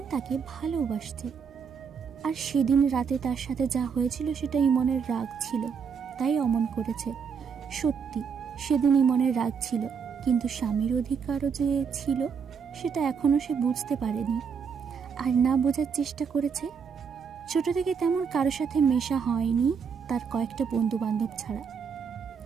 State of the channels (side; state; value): left; quieter; 6.3 dB